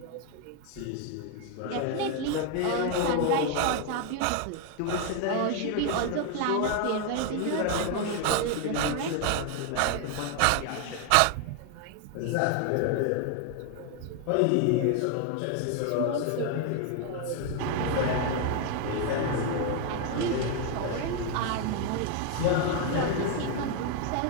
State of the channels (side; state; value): both; different; correlation 0.01